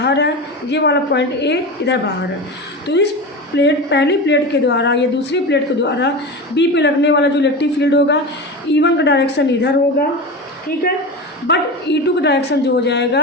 है, ये वाला पॉइंट ए इधर बाहर है। तो इस पहली प्लेट के द्वारा या दूसरी प्लेट के द्वारा बी पे लगने वाला जो इलेक्ट्रिक फील्ड होगा, E1 का डायरेक्शन इधर होगा। ठीक है, बट E2 का डायरेक्शन जो हो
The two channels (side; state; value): both; normal; correlation 0.25